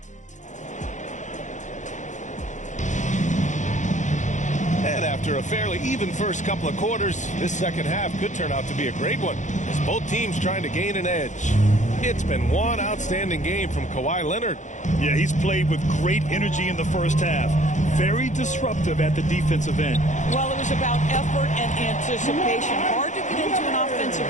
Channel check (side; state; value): right; late; 0.35 ms